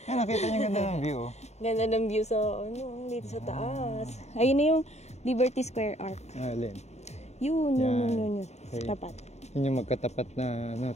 Yan, nakita niyo ganda ng view. Ganda ng view sa, dito sa taas. Ayun na yung Liberty Square Arc. Alin? Yun. Okay. Tapat. Yun yung magkatapat na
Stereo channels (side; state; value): right; late; 0.32 ms